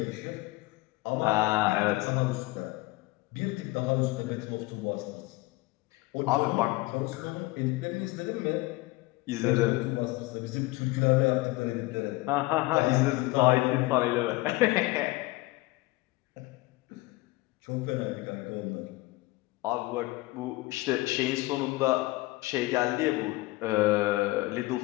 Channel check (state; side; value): quieter; right; 20.9 dB